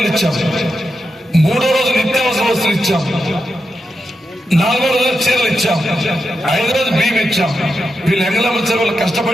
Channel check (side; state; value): both; normal; correlation 0.87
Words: ఇచ్చాం. 3వ రోజు నిత్యావసర వస్తువులు ఇచ్చాం. 4వ రోజు చీరలు ఇచ్చాం. 5వ రోజు బియ్యం ఇచ్చాం. వీళ్ళు ఎంగళమ్మ చెరువులు